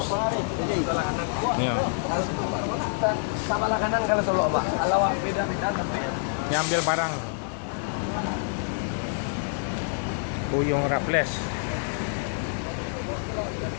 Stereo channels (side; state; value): right; silent; 60 dB below the other